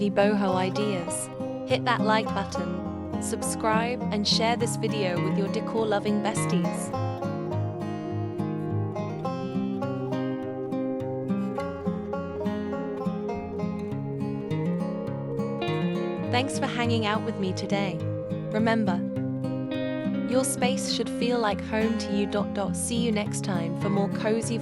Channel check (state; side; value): identical; both; correlation 1.00